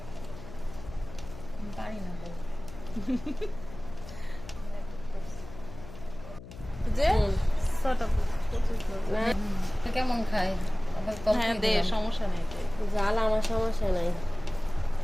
কেমন খায় হ্যাঁ দে, সমস্যা নেই। জাল আমার সমস্যা নাই।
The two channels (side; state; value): left; noise; hum, 15 dB below the sound